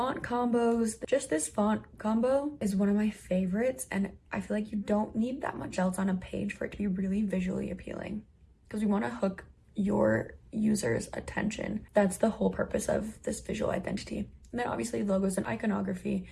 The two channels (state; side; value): identical; both; correlation 1.00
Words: combos, just this font combo is one of my favorites, and I feel like you don't need that much else on a page for it to be really visually appealing, because we want to hook your users' attention. That's the whole purpose of this visual identity. And then obviously logos and iconography.